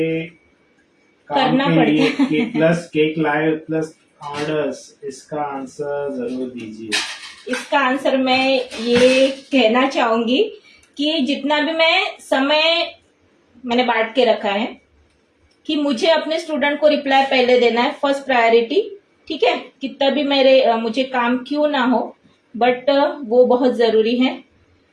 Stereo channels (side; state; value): both; identical; correlation 1.00